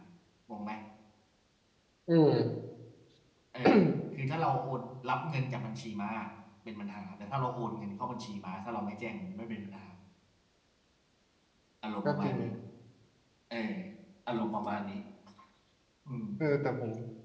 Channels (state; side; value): identical; both; correlation 1.00